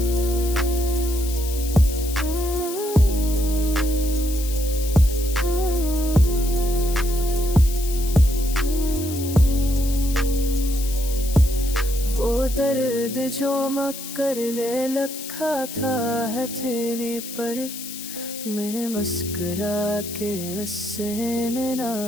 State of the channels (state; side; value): noise; left; hiss, 10 dB below the sound